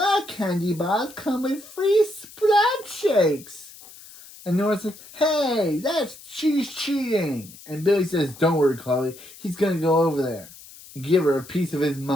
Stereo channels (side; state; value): left; noise; hiss, 19 dB below the sound